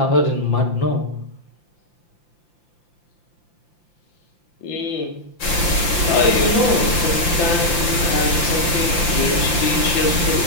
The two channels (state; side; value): late; right; 5.8 ms